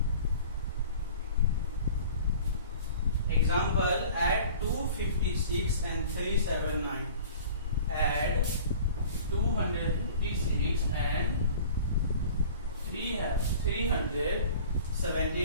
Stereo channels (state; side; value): inverted; both; correlation -0.44